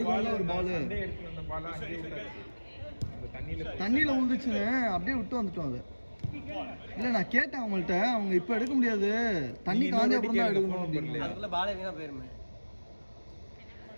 ஒரு பால். சண்டே எடுத்து வந்த பால் அங்கே விட்டாச்சு. தண்ணியில விழுந்துச்சுன்னு அப்படியே விட்டு வந்துட்டோம். அது இல்ல நான் கேட்டேன் அவங்கள்ட்ட, அவங்க இப்ப எடுக்க முடியாது, தண்ணி காஞ்ச அப்புறம் தான் எடுக்கணும் அப்படின்னு. அதுக்குள்ள பால் வீணா போயிருமே.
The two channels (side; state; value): both; inverted; correlation -1.00